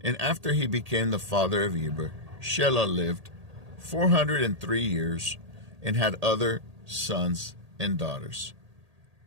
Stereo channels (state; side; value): late; left; 1.8 ms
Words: after he became the father of Eber, Shelah lived 403 years and had other sons and daughters.